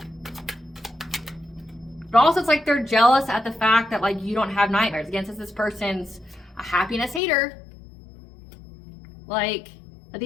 But also it's like they're jealous at the fact that like you don't have nightmares. Again, since this person's a happiness hater, like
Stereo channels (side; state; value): right; drops out; at 7.2 s